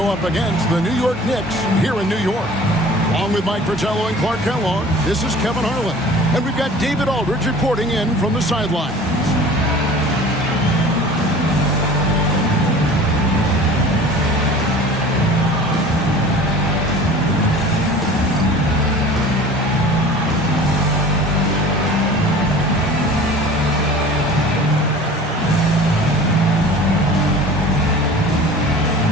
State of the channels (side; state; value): both; normal; correlation 0.43